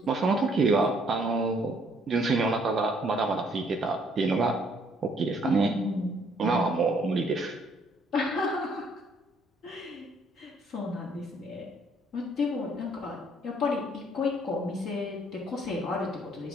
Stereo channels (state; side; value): normal; both; correlation 0.65